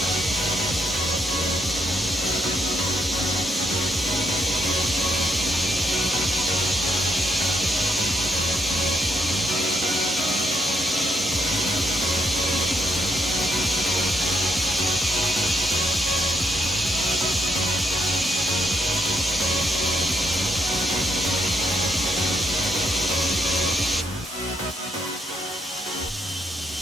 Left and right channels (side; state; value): both; normal; correlation 0.76